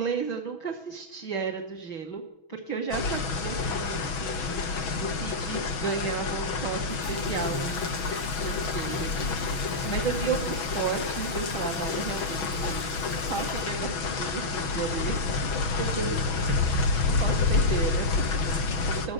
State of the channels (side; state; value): right; late; 6.2 ms